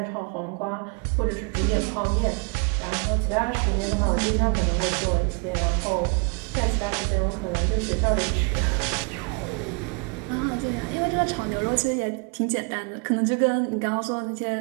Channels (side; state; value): left; quieter; 34.4 dB